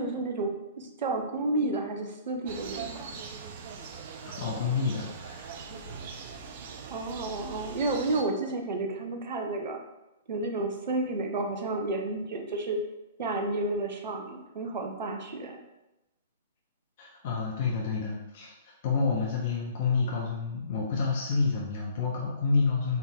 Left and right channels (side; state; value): both; inverted; correlation -0.46